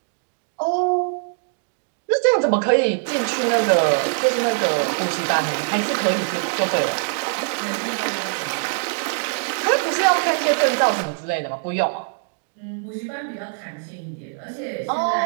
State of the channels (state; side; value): silent; left; digital silence